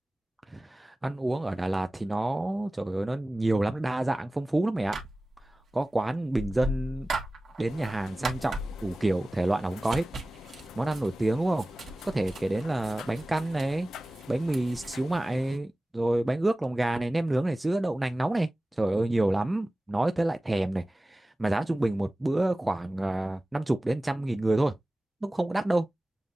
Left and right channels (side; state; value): both; normal; correlation 0.97